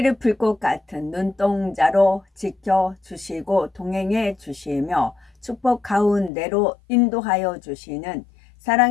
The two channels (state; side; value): drops out; right; at 6.3 s